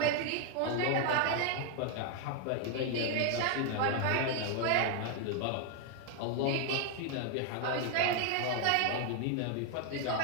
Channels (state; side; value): different; both; correlation 0.00